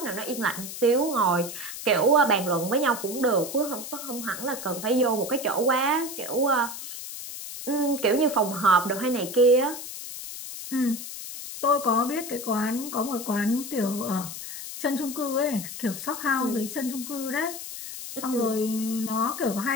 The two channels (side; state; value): left; noise; hiss, 9 dB below the sound